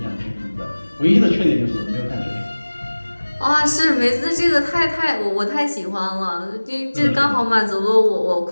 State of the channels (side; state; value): both; inverted; correlation -1.00